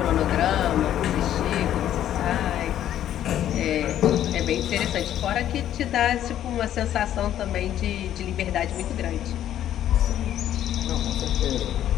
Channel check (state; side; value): quieter; right; 11.4 dB